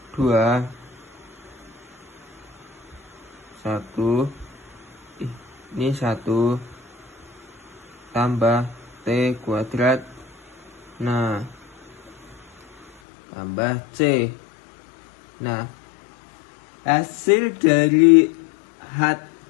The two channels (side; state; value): right; drops out; at 12.9 s